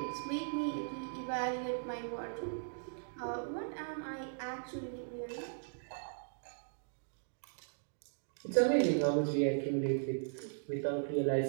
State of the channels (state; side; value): silent; left; digital silence